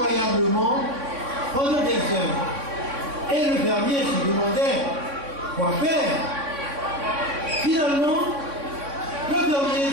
pendant des heures. Et le fermier se demandait quoi faire. Finalement, le fermier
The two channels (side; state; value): left; late; 3.6 ms